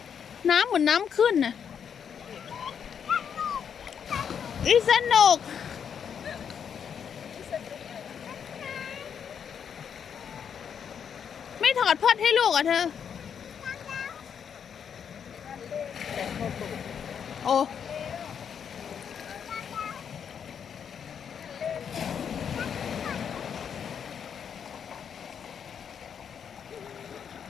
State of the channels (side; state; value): right; quieter; 7.6 dB